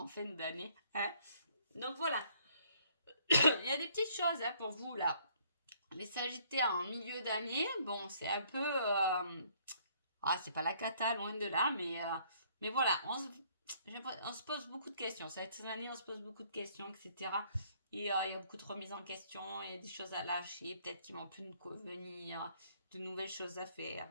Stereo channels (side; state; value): both; inverted; correlation -0.63